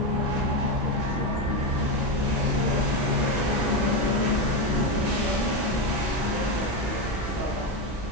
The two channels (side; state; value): right; noise; hum, 14 dB below the sound